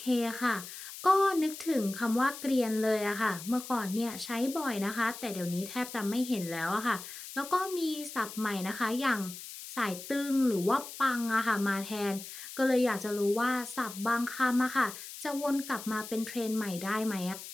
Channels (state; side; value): noise; left; hiss, 12 dB below the sound